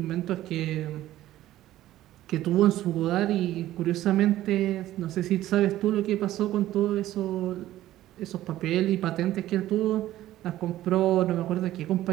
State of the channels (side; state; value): left; quieter; 14.3 dB